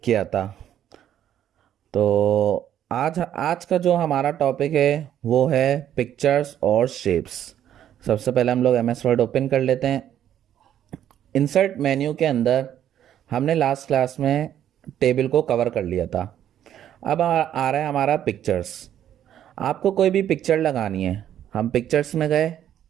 किया था। तो आज आज का जो हमारा टॉपिक है वो है पिक्चर्स और शेप्स। सबसे पहले हम लोग एमएस वर्ड ओपन कर लेते हैं। इंसर्ट मेन्यू के अंदर हमने लास्ट क्लास में टेबल को कवर कर लिया था। अब आ रहा है हमारा पिक्चर्स। आपको कोई भी पिक्चर लगानी है, हम पिक्चर्स में गए।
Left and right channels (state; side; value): quieter; left; 10.7 dB